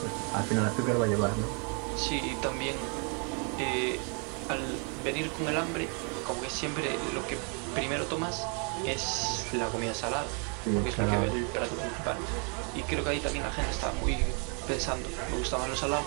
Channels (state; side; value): quieter; left; 38.0 dB